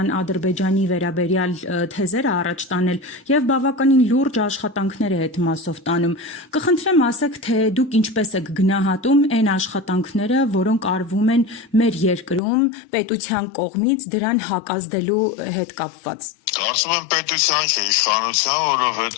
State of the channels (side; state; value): right; drops out; at 12.4 s